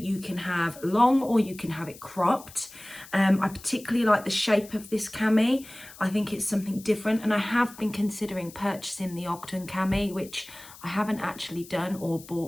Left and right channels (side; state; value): left; noise; hiss, 19 dB below the sound